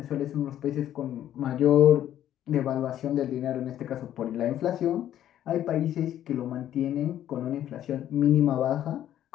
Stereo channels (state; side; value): quieter; right; 11.5 dB